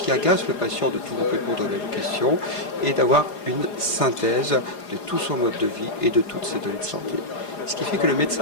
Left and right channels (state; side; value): late; right; 4.9 ms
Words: agacent le patient de tout répondre aux mêmes questions, et d'avoir une synthèse de tout son mode de vie et de toutes ses données de santé. Ce qui fait que le